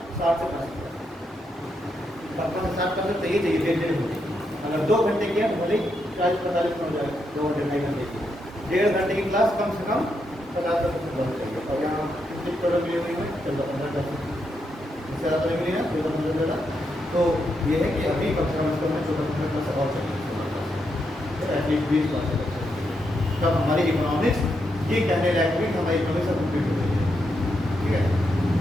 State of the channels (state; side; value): normal; both; correlation 0.81